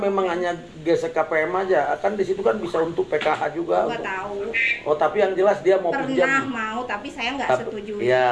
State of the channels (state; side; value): identical; both; correlation 1.00